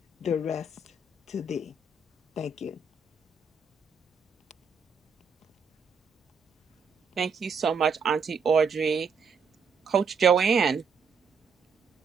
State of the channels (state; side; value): quieter; left; 4.8 dB